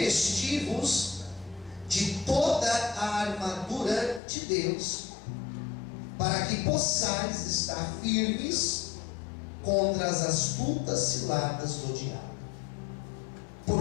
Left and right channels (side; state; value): right; drops out; at 4.2 s